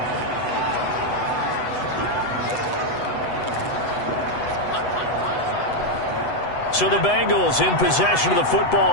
So the Bengals in possession of the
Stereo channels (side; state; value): right; late; 8.0 ms